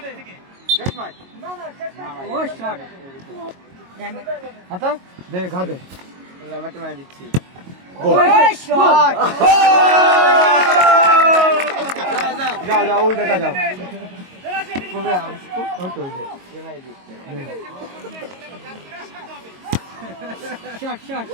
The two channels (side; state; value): left; late; 22 ms